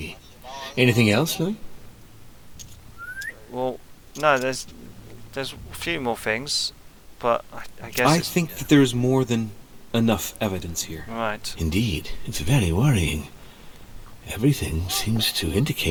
Anything else, Louis? Well, no, there's a few more things, but I guess I it's... think that there is more than enough evidence here. Right. Indeed, it's very worrying. Everything seems to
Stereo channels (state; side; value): identical; both; correlation 1.00